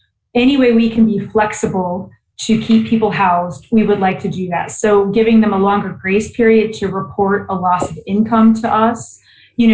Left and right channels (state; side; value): identical; both; correlation 1.00